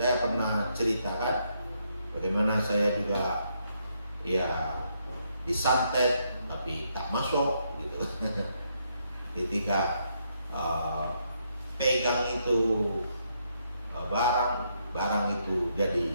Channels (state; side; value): inverted; both; correlation -0.76